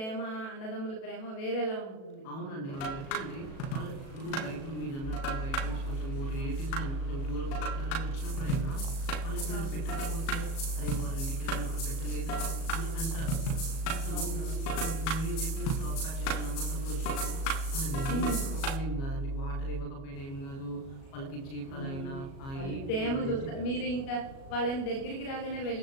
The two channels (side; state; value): right; late; 37 ms